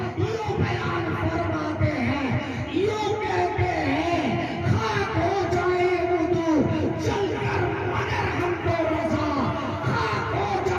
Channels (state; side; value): identical; both; correlation 1.00